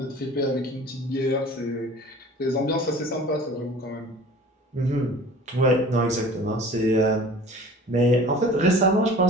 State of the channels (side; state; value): both; normal; correlation 0.44